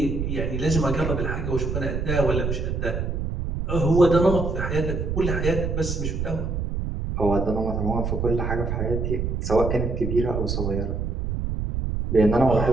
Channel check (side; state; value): right; noise; rumble, 2 dB below the sound